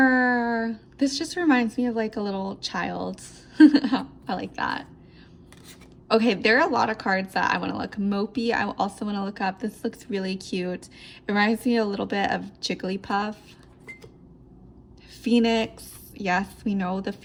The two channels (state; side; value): identical; both; correlation 1.00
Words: This just reminds me of like a little child. I like that. Okay, there are a lot of cards that I want to look. Mopi, I also want to look up. This looks really cute. It reminds me a little bit of Jigglypuff. Phoenix. Yes, we know the